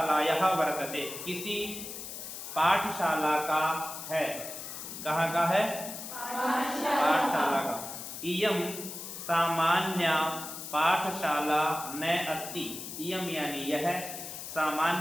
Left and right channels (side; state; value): left; noise; hiss, 9 dB below the sound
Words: वर्तते, किसी पाठशाला का है। कहाँ का है? पाठशाला का। इयम सामान्य पाठशाला न अस्ति। इयम यानी यह,